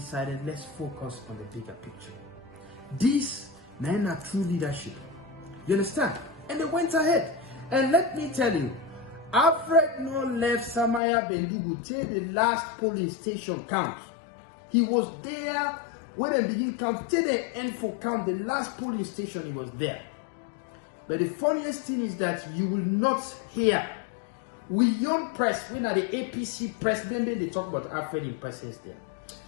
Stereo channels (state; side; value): drops out; right; at 11.0 s